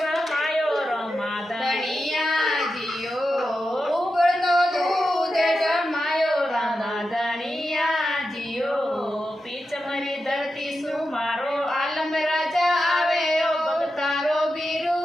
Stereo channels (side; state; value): both; normal; correlation 0.90